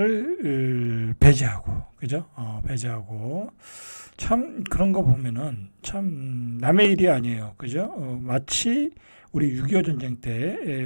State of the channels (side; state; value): both; inverted; correlation -1.00